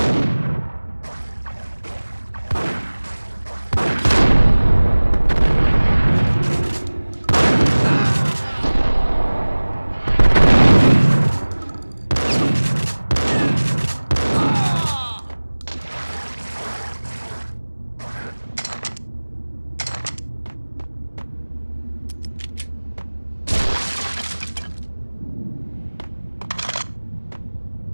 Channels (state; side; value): inverted; both; correlation -1.00